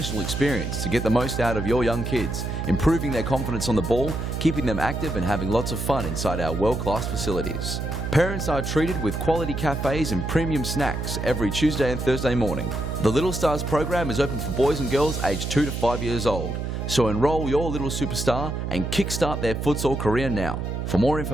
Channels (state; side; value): noise; right; hum, 3 dB below the sound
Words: experience to get the most out of your young kids, improving their confidence on the ball, keeping them active and having lots of fun inside our world-class facilities. Parents are treated with quality cafes and premium snacks every Tuesday and Thursday morning. The Little Stars program is open for boys and girls aged 2 to 5 years old. So enroll your little superstar and kickstart their futsal career now. For more